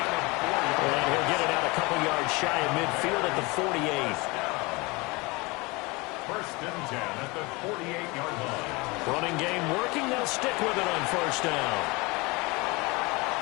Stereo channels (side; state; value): right; quieter; 25.3 dB